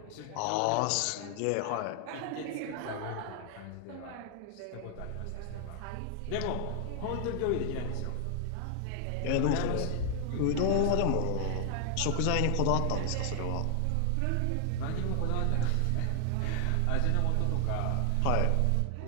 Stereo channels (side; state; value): both; different; correlation 0.00